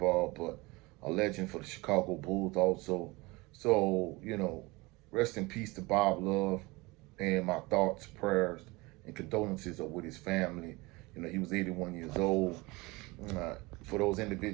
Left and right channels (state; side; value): quieter; left; 23.5 dB